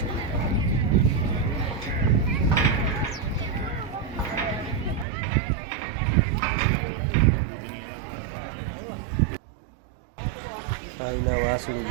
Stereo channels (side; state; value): left; drops out; at 5.1 s